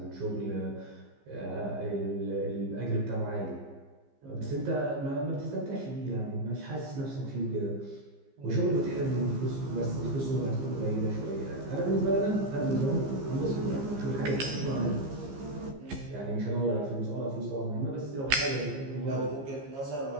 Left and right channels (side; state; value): left; late; 15 ms